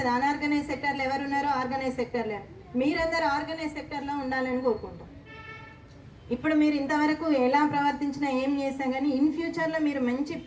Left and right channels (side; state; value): both; identical; correlation 1.00